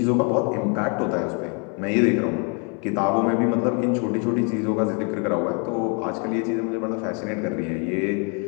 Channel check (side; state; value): right; quieter; 36.8 dB